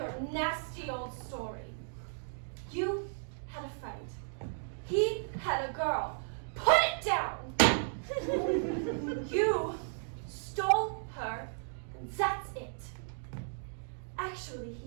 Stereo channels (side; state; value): left; silent; digital silence